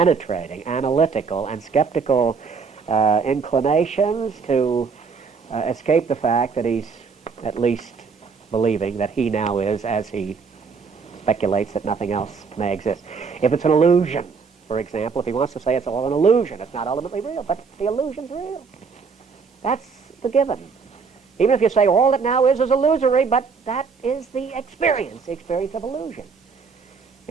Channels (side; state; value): left; quieter; 5.3 dB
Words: analytical, and skeptical inclinations to escape the fact that he's at least believing that he now is as he speculates that nothing else may exist? If it's an illusion, for example, if he wants to say it's all an illusion, it's not ultimately real, but the illusion's real. That's the given. Even if you say all that now is illusory, but that is the experience of illusion.